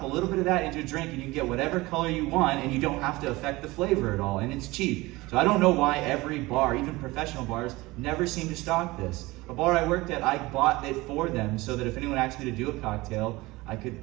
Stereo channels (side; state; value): left; quieter; 21.0 dB